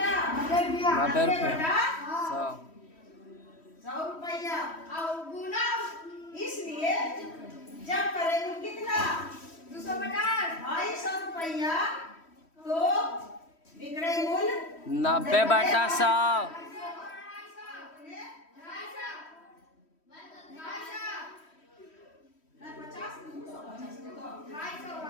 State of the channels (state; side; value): late; right; 3.1 ms